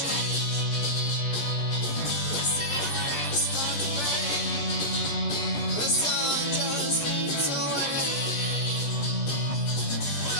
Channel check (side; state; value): right; late; 14 ms